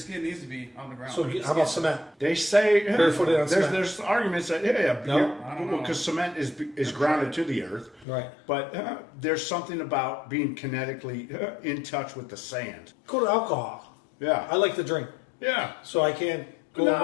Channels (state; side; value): drops out; right; at 8.1 s